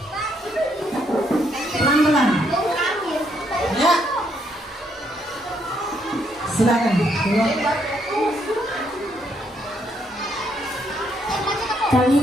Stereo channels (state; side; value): normal; both; correlation 0.73